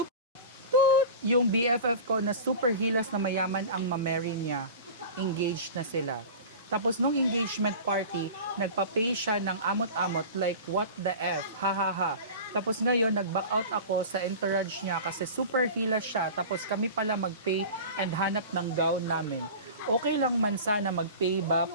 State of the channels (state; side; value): inverted; both; correlation -0.34